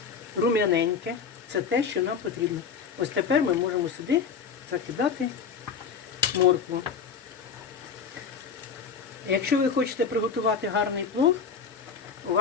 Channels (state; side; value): quieter; right; 6.1 dB